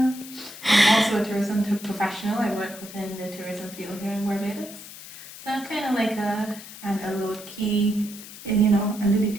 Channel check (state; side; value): noise; left; hiss, 15 dB below the sound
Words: I'm also a tourism professional. I work within the tourism field here in Barbados. So I'm kind of like a low-key, under the